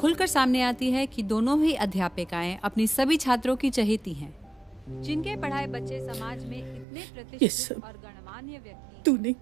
सामने आती है कि दोनों ही अध्यापिकाएं अपनी सभी छात्रों की चहेती हैं. जिनके पढ़ाए बच्चे समाज में इतने प्रतिष्ठित और गणमान्य व्यक्ति तूने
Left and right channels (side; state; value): left; drops out; at 6.9 s